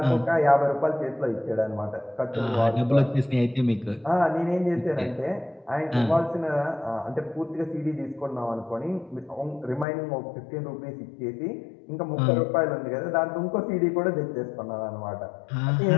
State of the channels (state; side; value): drops out; right; at 9.9 s